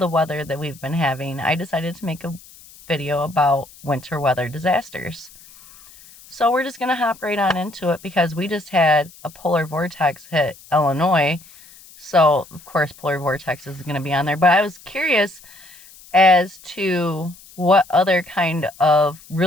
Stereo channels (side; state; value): left; noise; hiss, 22 dB below the sound